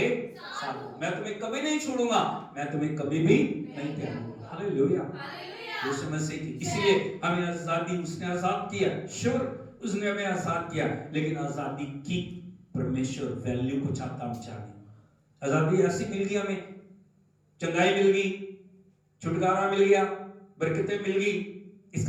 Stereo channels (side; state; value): both; identical; correlation 1.00